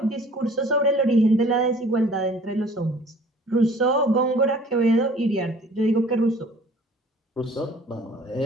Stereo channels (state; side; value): normal; both; correlation 0.51